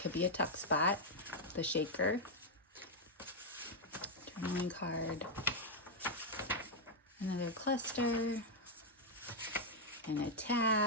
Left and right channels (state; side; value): normal; both; correlation -0.02